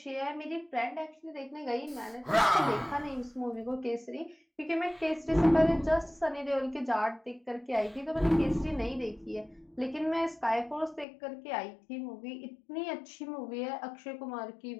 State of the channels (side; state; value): right; drops out; at 11.1 s